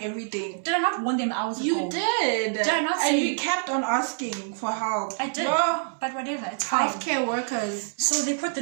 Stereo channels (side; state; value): left; silent; 61 dB below the other